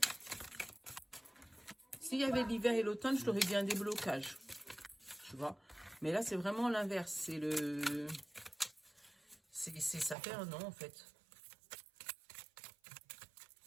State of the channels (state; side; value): drops out; left; at 10.2 s